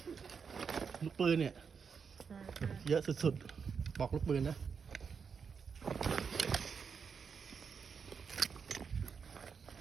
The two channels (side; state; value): left; quieter; 6.1 dB